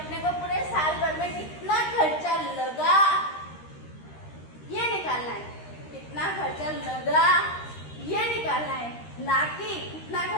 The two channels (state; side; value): late; right; 13 ms